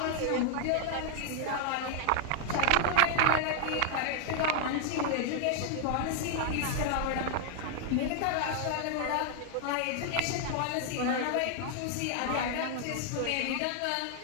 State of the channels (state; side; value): different; both; correlation 0.00